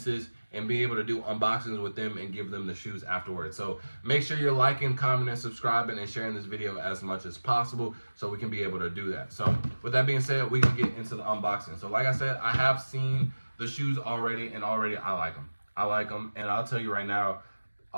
and be able to do unboxings with them and give them the shoes afterwards. So make sure you're liking, commenting, subscribing, and sharing this video as much as possible so we can be able to do that. So with that being said, we can get into the unboxing. So like I said, I have seen the shoes already, and already I like them. I like them, and I'll tell you right now,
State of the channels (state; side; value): inverted; both; correlation -1.00